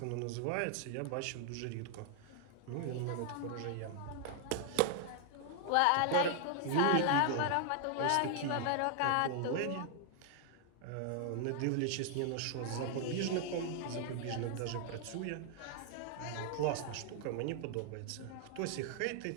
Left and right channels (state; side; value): different; both; correlation 0.00